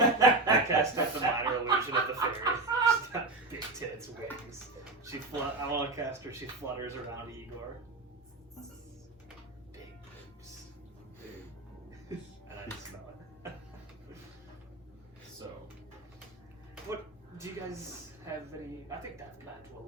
cast up the minor illusion of the fairy. She's got big tits, wings. I want to cast her. She flutters around Igor. Big boobs. And I just smell it. So, What do you guys have any? I think that plan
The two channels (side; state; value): left; quieter; 3.1 dB